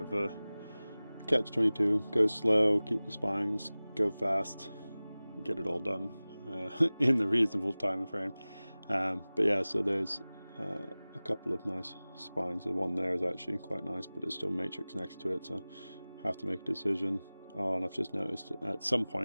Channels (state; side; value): inverted; both; correlation -0.98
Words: a catch-22. Go slow, keep the spines, go fast, get it all done in the reasonable time frame. But yeah, so there's a couple of nice spines. The one there is actually quite nice, but it's still matrix next to it, so I have to make a decision. Oh, and I've just noticed at some